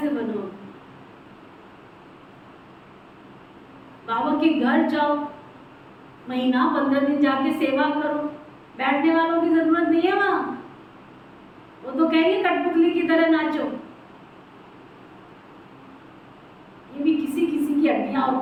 बनो? बाबा के घर जाओ, महीना 15 दिन जाके सेवा करो, बैठने वालों की जरूरत नहीं है वहां। वो तो कहेंगे कठपुतली की तरह नाचो। ये भी किसी किसी की हड्डियां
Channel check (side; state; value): both; identical; correlation 1.00